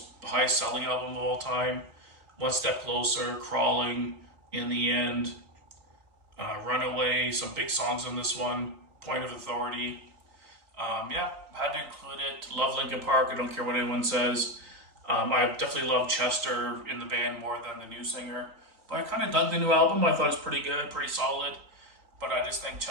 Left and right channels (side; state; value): left; late; 3.9 ms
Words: high-selling album of all time. One Step Closer, Crawling, In the End, Runaway, some big songs on this one, Point of Authority. Yeah, had to include it. Love Linkin Park, I don't care what anyone says. I definitely love Chester in the band more than the new singer. But I kind of dug the new album. I thought it was pretty good, pretty solid. But I just think